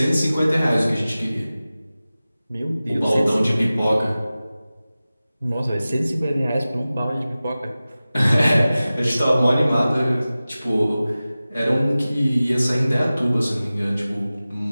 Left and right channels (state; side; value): inverted; both; correlation -0.96